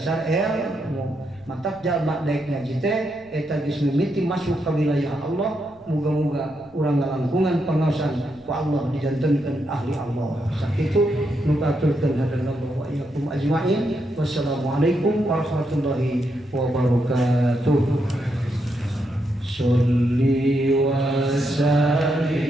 ilmu matak jalma daek ngaji teh eta geus mimiti masuk ka wilayah Allah muga-muga urang ngalangkungan pangaosan ku Allah dijantenkeun ahli Allah sakitu nu katurkeun hadanallahu wa iyyakum ajmain wassalamualaikum warahmatullahi wabarakatuh sholli wa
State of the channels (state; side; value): noise; left; rumble, 29 dB below the sound